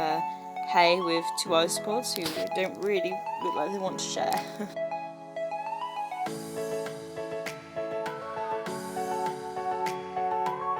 hay with two ice pods who don't really look like they want to share.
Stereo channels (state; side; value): identical; both; correlation 1.00